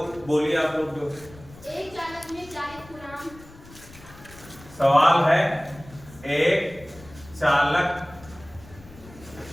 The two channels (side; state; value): left; noise; rumble, 21 dB below the sound